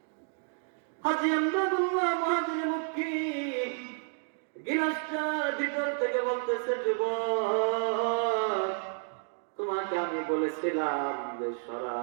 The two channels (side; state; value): left; silent; 57 dB below the other